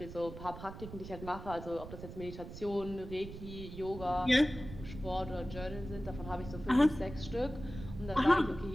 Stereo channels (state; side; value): noise; right; rumble, 11 dB below the sound